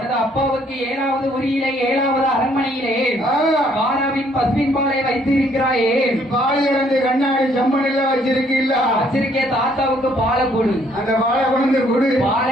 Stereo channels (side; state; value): both; normal; correlation 0.65